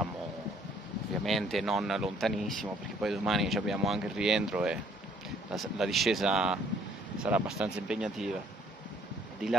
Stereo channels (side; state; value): both; normal; correlation 0.62